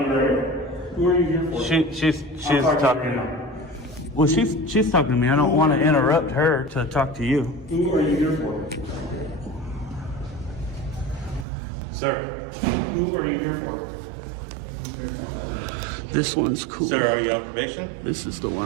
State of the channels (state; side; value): drops out; left; at 11.5 s